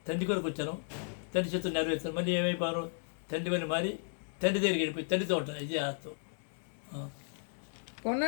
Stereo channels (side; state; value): right; silent; digital silence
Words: తండ్రి కొరకు వచ్చాను, తండ్రి చేత నెరవేర్చాను. మళ్ళీ ఏమైపోయాను? తండ్రి వల్ల మారి తండ్రి దగ్గరికి వెళ్ళిపోయి తండ్రితో ఉంటాను. ఇది ఆత్మ.